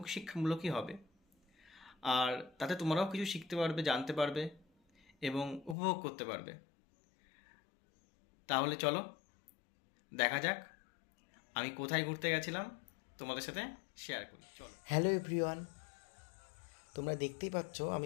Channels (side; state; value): right; drops out; at 5.8 s